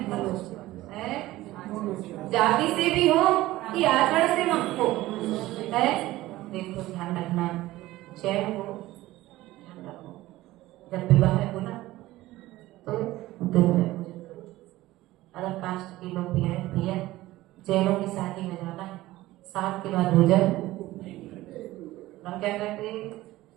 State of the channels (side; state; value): left; quieter; 17.0 dB